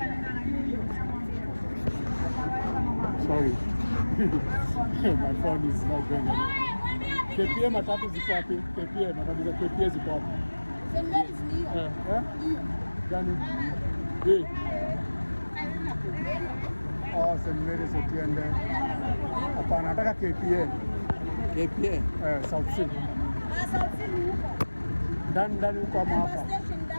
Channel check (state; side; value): inverted; both; correlation -1.00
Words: Sorry. My phone is not going anywhere. KPA matatu ziko wapi? KPA matatu za KPA ziko wapi? Gani? Oh, St. Mary's Otiende. Hapana, nataka KPA. KPA? South Sea. South Sea huko. Ndani huko ama hapa?